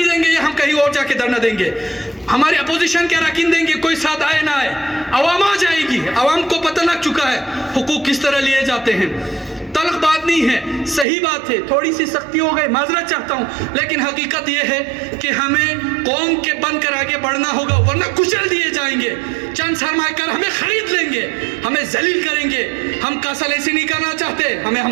دیں گے یا ہم کہیں اور جا کے دھرنا دیں گے. ہمارے اپوزیشن کے اراکین دیں گے, کوئی ساتھ آئے نہ آئے, عوام آ جائے گی. عوام کو پتہ لگ چکا ہے حقوق کس طرح لیے جاتے ہیں. تلخ بات نہیں ہے, صحیح بات ہے, تھوڑی سی سختی ہو گئی, معذرت چاہتا ہوں, لیکن حقیقت یہ ہے کہ ہمیں قوم کے بن کر آگے بڑھنا ہوگا, ورنہ کچل دیے جائیں گے. چند سرمایہ کار ہمیں خرید لیں گے, ہمیں ذلیل کریں گے. ہم کاسل ایسی نہیں کرنا چاہتے, ہمیں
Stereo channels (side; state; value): left; drops out; at 11.1 s